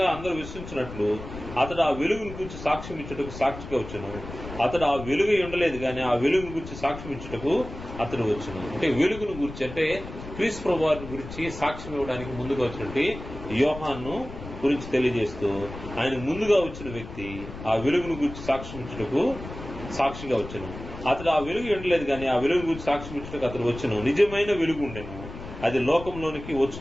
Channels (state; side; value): noise; left; rumble, 12 dB below the sound